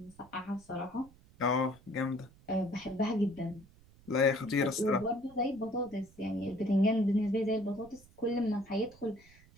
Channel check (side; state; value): right; noise; rumble, 25 dB below the sound